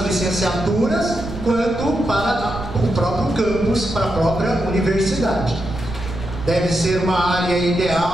licenciaturas, quanto para o próprio campus, para a própria universidade. Deve ser uma área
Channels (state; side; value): noise; right; rumble, 11 dB below the sound